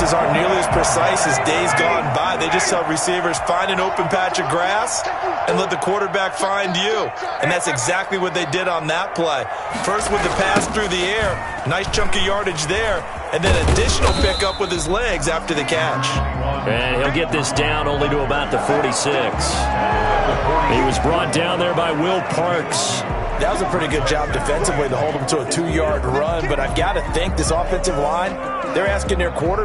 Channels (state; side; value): identical; both; correlation 1.00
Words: aren't nearly as precise as days gone by. They just tell receivers, find an open patch of grass and let the quarterback find you. And that's exactly what they did on that play. First with the pass through the air, nice chunk of yardage there, and then additional pickup with his legs after the catch. And he'll get this down only to about the 46. He was brought down there by Will Parks. That was a pretty good job defensively to hold him to a 2-yard run, but I've got to think this offensive line, they're asking their